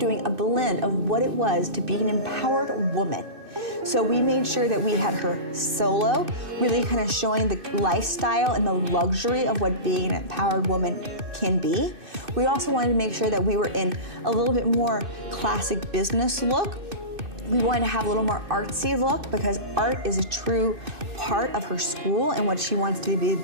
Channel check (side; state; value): left; late; 2.6 ms